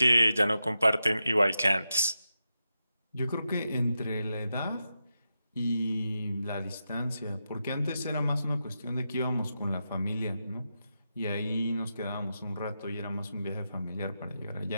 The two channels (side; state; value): both; inverted; correlation -0.88